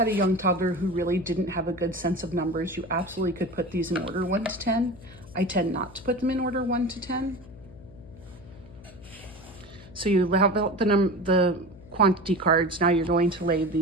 a young toddler who really didn't have a good sense of numbers, you absolutely could put these in order 1 to 10. I tend not to put them in order 1 to 10. So you have the quantity cards. Now you're going to lay the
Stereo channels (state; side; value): noise; left; hum, 21 dB below the sound